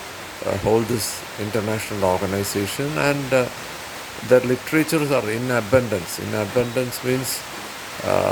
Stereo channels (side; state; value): both; identical; correlation 1.00